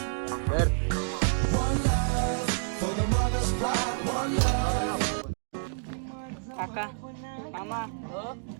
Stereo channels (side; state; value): left; silent; digital silence